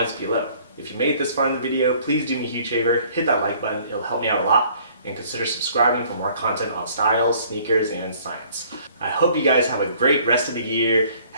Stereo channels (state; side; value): inverted; both; correlation -0.57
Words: below. If you made it this far in the video, please do me a huge favor, hit that like button, it'll help me out a lot, and consider subscribing for more content on styles, sneakers, and science. I hope you guys have a great rest of the year,